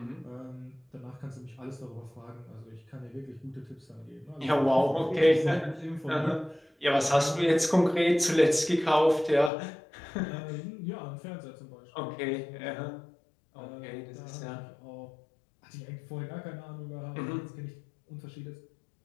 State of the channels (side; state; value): right; drops out; at 9.5 s